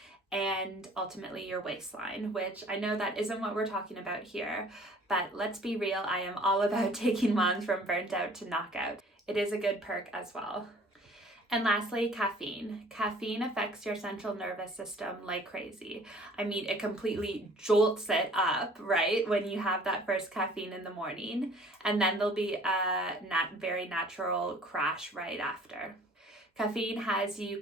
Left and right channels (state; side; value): normal; both; correlation 0.52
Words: and ultimately your waistline, which I know that isn't what we're talking about here, but let's be real, I am all about taking moms from burnt out to knockout. It is a good perk as well. And lastly, caffeine. Caffeine affects your central nervous system like crazy. I mean, it completely jolts it up, right? When you have that first caffeine in the morning, and then there'll be a very natural crash right after. Caffeine has you